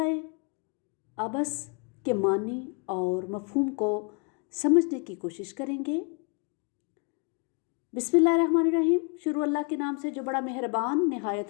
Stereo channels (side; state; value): right; quieter; 36.1 dB